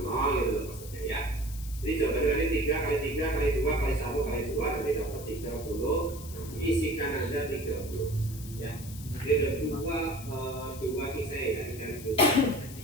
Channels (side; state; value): left; noise; hiss, 15 dB below the sound